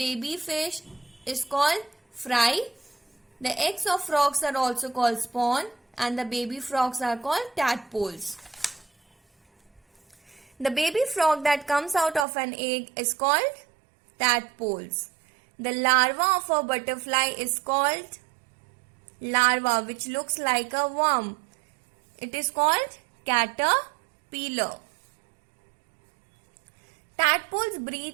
fish is called fry. The eggs of frogs are also called spawn, and the baby frogs are called tadpoles. The baby frog that comes out of an egg is called tadpoles. The larva of a butterfly is called larva, which looks like a worm. It is called caterpillar. Tadpoles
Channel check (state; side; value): drops out; left; at 12.2 s